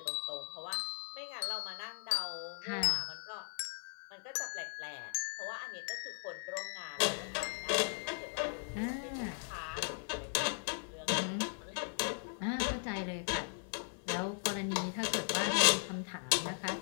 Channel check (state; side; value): silent; right; 52 dB below the other